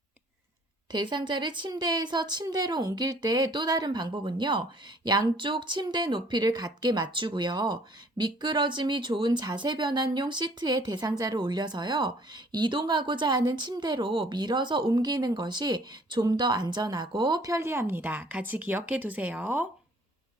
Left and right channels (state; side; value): normal; both; correlation 0.57